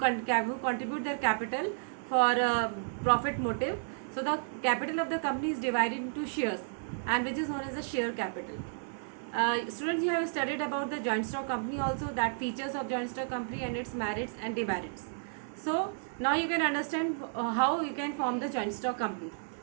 their capital for profit motive. So the capital of the company is divided into shares, and which is known as the share capital. Students, you have studied about the joint stock company also, that features of joint stock company and its merits and demerits. So now you can understand how you can form the joint stock company.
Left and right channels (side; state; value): left; silent; 56 dB below the other